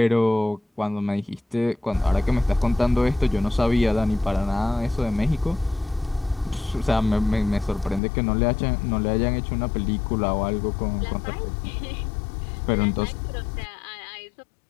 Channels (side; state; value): right; drops out; at 8.0 s